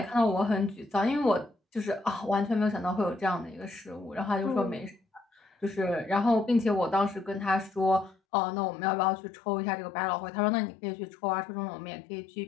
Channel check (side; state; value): right; drops out; at 8.2 s